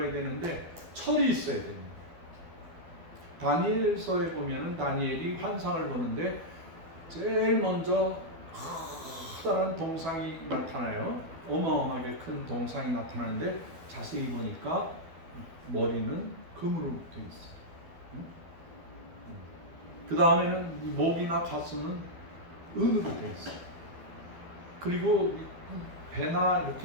되는데 철이 있어야 됩니다. 다니엘서에 보면은 다니엘이 환상을 보는데 제일 먼저 커다란 동상이 나타나요. 어마어마하게 큰 동상이 나타나는데 자세히 보니까 머리는 금으로 되어 있어요. 그 다음에는 목이나 가슴은 은으로 되어 있어요. 그리고 배나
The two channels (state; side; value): late; left; 12 ms